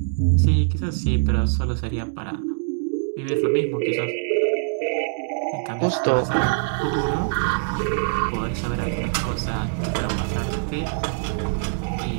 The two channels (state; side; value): silent; left; digital silence